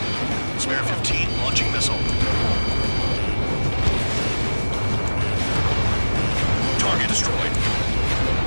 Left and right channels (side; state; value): both; inverted; correlation -1.00